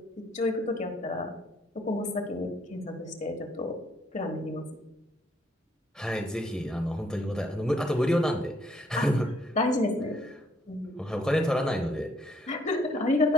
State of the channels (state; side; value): normal; both; correlation 0.68